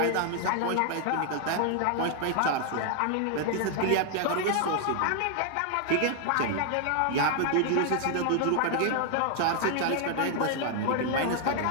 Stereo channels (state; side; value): different; both; correlation 0.00